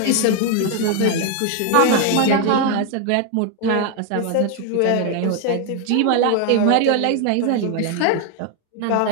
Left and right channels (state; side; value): different; both; correlation 0.01